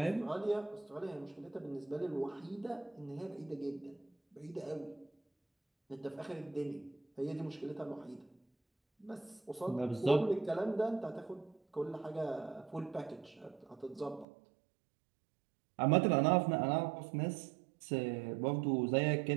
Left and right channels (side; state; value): left; drops out; at 14.2 s